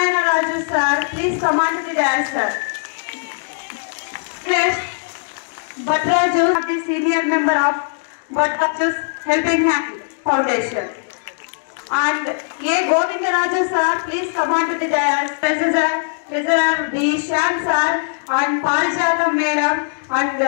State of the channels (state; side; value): silent; right; digital silence